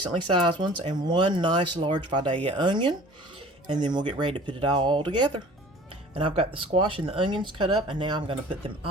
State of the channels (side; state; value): both; normal; correlation 0.46